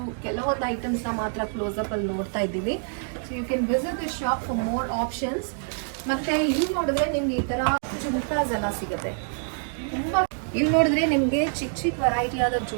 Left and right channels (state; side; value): silent; left; 61 dB below the other